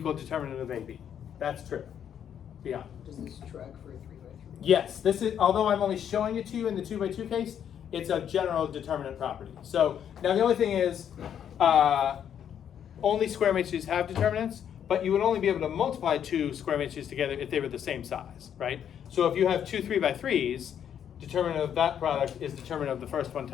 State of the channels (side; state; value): right; quieter; 9.0 dB